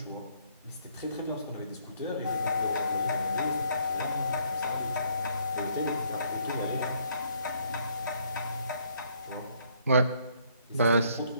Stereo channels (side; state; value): both; inverted; correlation -0.67